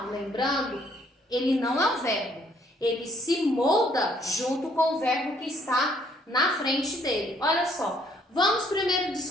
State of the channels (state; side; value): normal; both; correlation 0.65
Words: lembrando, ele não é um verbo, ele se molda junto com o verbo que está na frente dele. Olha só, vamos primeiro